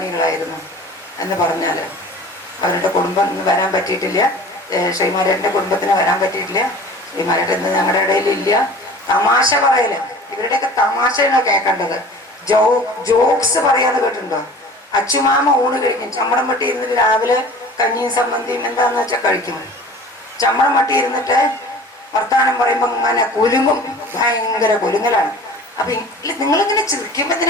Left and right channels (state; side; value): normal; both; correlation 0.43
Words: എന്ന് പറഞ്ഞാൽ. അവരുടെ കുടുംബം വരാൻ പറ്റിയിട്ടില്ല, ശ്രീമാരേട്ടൻ്റെ കുടുംബത്തിന് വരാൻ പറ്റിയിട്ടില്ല. ശ്രീമാരേട്ടൻ ഞങ്ങളുടെ ഇടയിലില്ല. തമാശ പറയല്, ഇവരുടെയൊക്കെ തമാശയാണ് കേൾക്കേണ്ടത്. ജോക്സ് പറയാന്ന് കേട്ടിട്ടുണ്ടോ? അച്ചുമാമ ഊണ് കഴിക്കും. ചമ്മടം വെട്ടി ഇരുന്നിട്ട് രാവിലെ കഞ്ഞിയും സമ്മന്തിയും എന്താന്ന് വെച്ചാൽ കഴിക്കും. ചമ്മടം വെട്ടി ഇരുന്നിട്ട് വർത്താനം പറയുമ്പോൾ ഇങ്ങനെ കുലുങ്ങും, ഭയങ്കര കുലുങ്ങലാണ്. അപ്പൊ നിങ്ങളിങ്ങനെ ചിരിക്കുമ്പോ